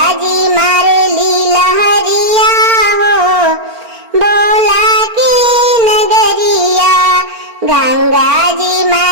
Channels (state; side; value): late; left; 4.4 ms